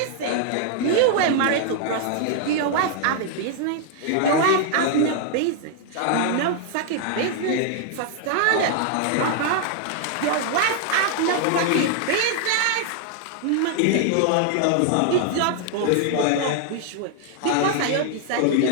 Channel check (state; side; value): different; both; correlation 0.00